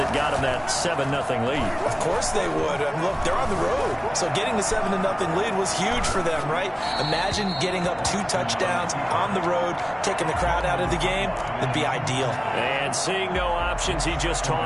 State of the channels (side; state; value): both; identical; correlation 1.00